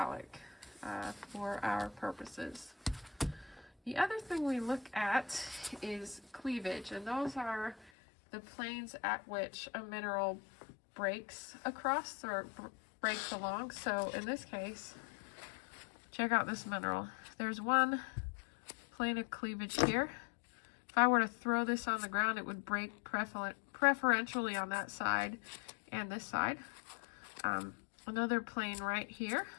for our purposes. The other thing we look at is cleavage, and those are the planes at which a mineral breaks across or breaks along. So in this case, check out this mineral. There's one plane of cleavage here. If I were to throw this on the ground, it would break preferentially on that side and this side. Another plane right here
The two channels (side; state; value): right; drops out; at 7.9 s